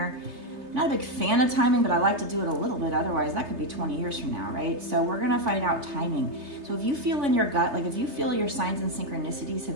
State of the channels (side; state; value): left; late; 3.3 ms